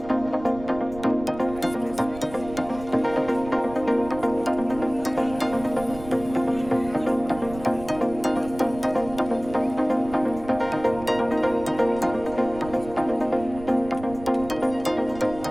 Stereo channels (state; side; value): noise; right; rumble, 15 dB below the sound